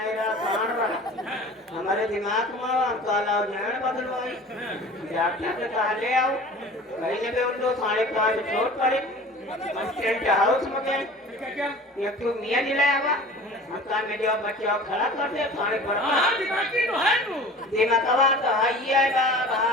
रहा सांड रहा हमारे दिमाग में काला जैन बदलवाई डॉक्टर से कहा ले आओ कहीं जगह उन लोग 5:30 चोट पड़ी टेंट हाउस में गए क्या क्या एक तो मियाँ जिलाया हुआ हमका में जो बच्चे और खड़ा कर दे पानी पर हाँ हाँ दिमागी तो है तू दिमागवा तो भैया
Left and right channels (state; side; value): normal; both; correlation 0.41